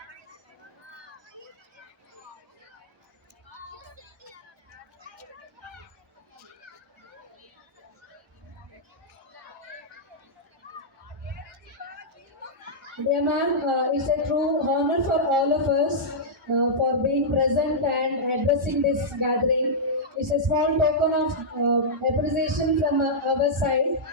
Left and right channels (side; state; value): both; normal; correlation -0.11